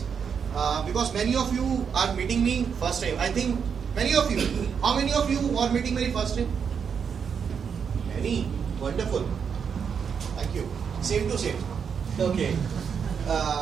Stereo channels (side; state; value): left; quieter; 6.8 dB